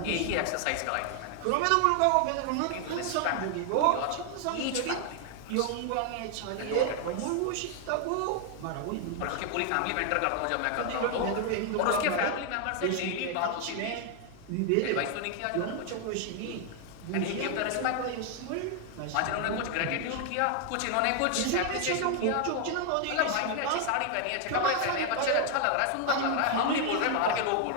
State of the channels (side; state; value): both; different; correlation 0.00